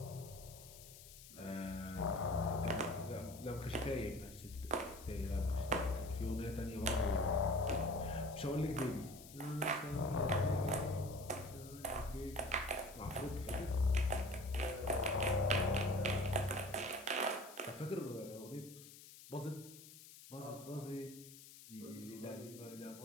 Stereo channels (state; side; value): noise; left; hiss, 17 dB below the sound